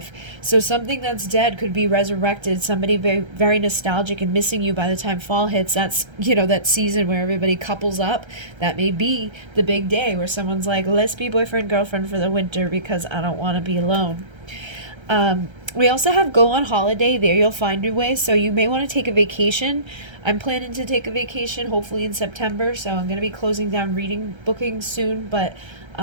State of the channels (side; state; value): left; late; 1.3 ms